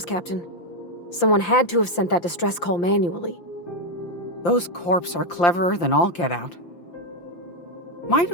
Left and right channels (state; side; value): late; right; 5.8 ms